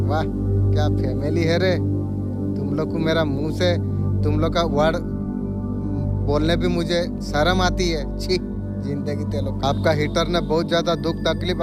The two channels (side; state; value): both; identical; correlation 1.00